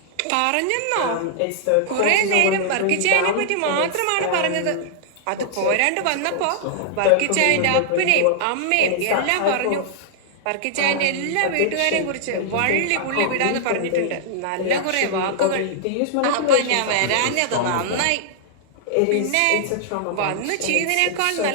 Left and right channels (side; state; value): both; different; correlation -0.01